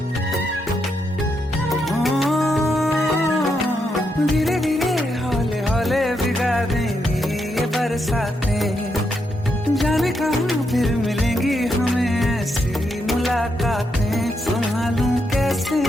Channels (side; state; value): both; normal; correlation 0.81